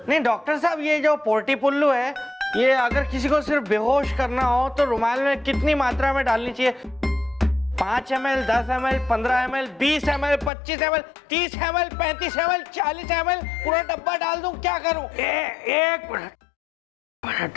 नहीं डॉक्टर साहब, ये जो पोर्टी पुल्लू है, ये अगर किसी को सिर्फ बेहोश करना हो तो रुमाल में कितनी मात्रा में डालनी चाहिए? 5 ml, 10 ml, 15 ml, 20 ml, 25 ml, 30 ml, 35 ml, 40 ml, पूरा डब्बा डाल दूं, क्या करूं? एक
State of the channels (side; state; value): right; drops out; at 10.5 s